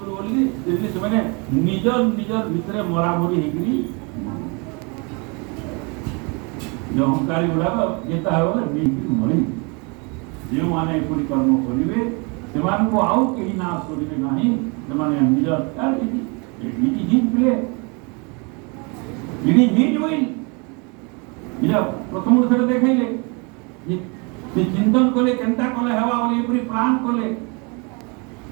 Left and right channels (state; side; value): quieter; left; 31.5 dB